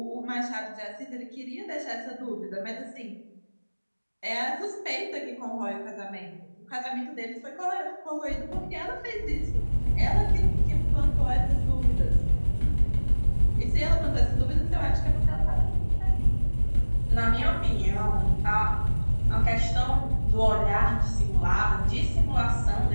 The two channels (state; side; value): inverted; both; correlation -1.00